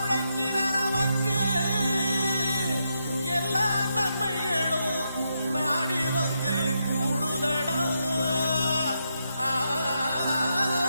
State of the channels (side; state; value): both; inverted; correlation -0.82